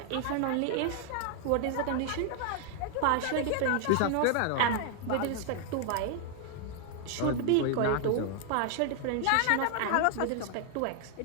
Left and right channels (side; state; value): both; different; correlation 0.00